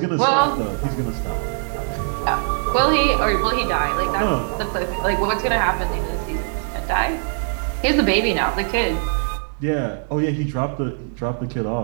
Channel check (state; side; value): silent; left; digital silence